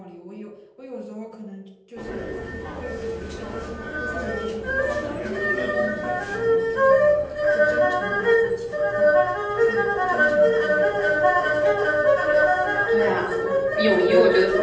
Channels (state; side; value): identical; both; correlation 1.00